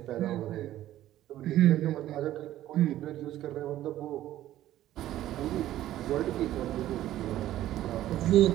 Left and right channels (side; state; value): left; quieter; 13.6 dB